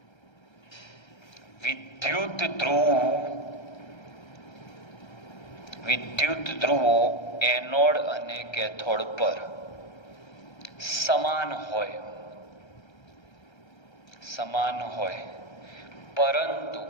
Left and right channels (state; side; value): late; right; 1.3 ms